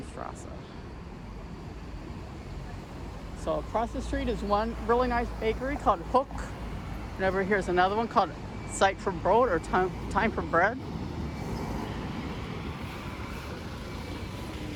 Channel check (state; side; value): identical; both; correlation 1.00